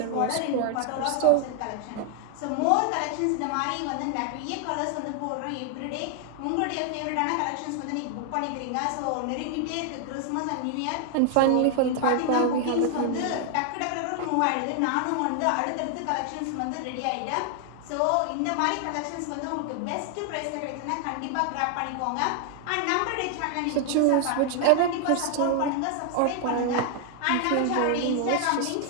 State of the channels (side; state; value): both; different; correlation 0.00